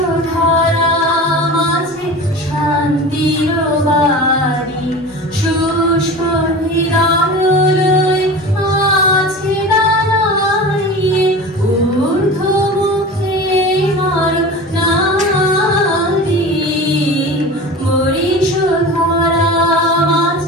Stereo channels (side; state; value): both; normal; correlation 0.33